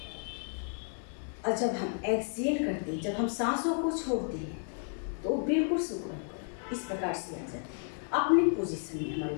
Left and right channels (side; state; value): right; silent; 56 dB below the other